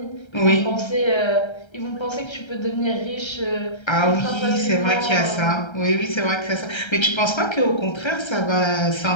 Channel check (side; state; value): right; late; 1.3 ms